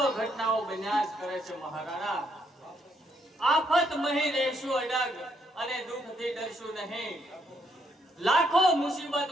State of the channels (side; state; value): both; normal; correlation 0.74